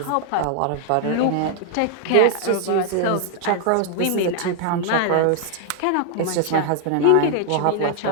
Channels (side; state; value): both; different; correlation -0.01